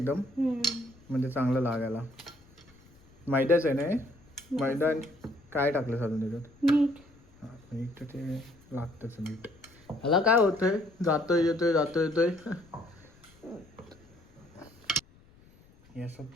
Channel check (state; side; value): noise; left; rumble, 27 dB below the sound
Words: म्हणजे चांगलं लागायला. मैद्याच आहे ना हे, मैदा काय टाकलं साधून त्याच्यात, मीठ. हां मीठ तर ते लागतंच मीठ. ह्याला काय होतंय, जातोय येतोय जातोय येतोय. हे असं